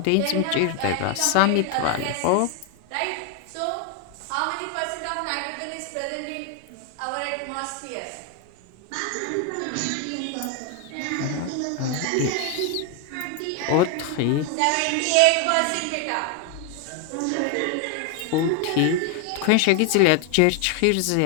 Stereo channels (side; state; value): both; different; correlation 0.01